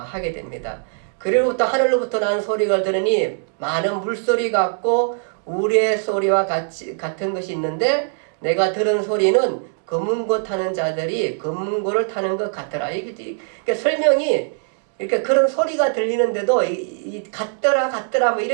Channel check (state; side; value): silent; left; 63 dB below the other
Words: 됩니다. 그리고부터 하늘로부터 나는 소리가 들으니 많은 물소리 같고 우리의 소리와 같은 것이 있는데 내가 들은 소리는 검은고 타는 자들이 검은고를 타는 것 같더라. 이게 설명이 이렇게 그런 소리가 들리는데도 같더라 뭐